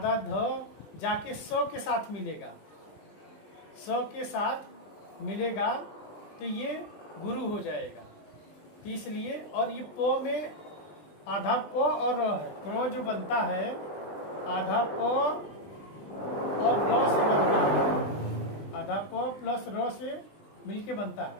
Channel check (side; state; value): right; late; 20 ms